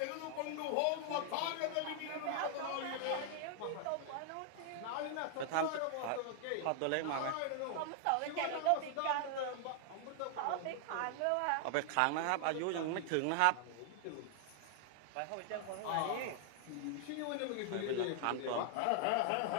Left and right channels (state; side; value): different; both; correlation 0.00